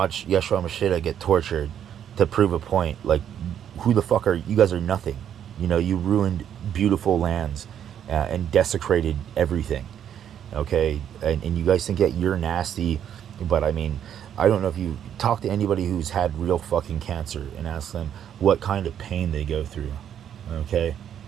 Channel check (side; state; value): left; quieter; 9.5 dB